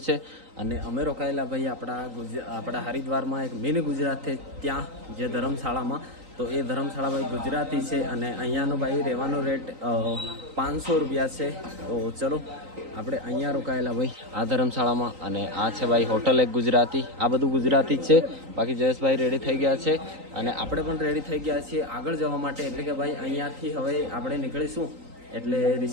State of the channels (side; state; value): left; late; 3.9 ms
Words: છે અને અમે રોકાયેલા ભાઈ આપણા હરિદ્વારમાં એક મિની ગુજરાત છે ત્યાં, જે ધર્મશાળામાં. તો એ ધર્મશાળા ભાઈ ગુજરાતી છે અને અહીંયાનો ભાઈ રહેવાનો રેટ 500 રૂપિયા છે. તો ચલો આપણે અહીંયા રોકાયેલા ભાઈ આ ધર્મશાળામાં. અને આ છે ભાઈ હોટલ એક ગુજરાતી. આ બધું ગુજરાતી જ છે. બાકી જયેશભાઈ રેડી થઈ ગયા છે અને આપણે પણ રેડી થઈ ગયા છીએ આગળ જવા માટે. એટલે કે ભાઈ અહીંયાથી હવે આપણે નીકળીશું એટલે